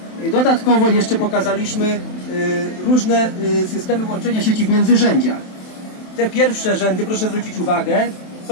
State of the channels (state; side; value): late; right; 27 ms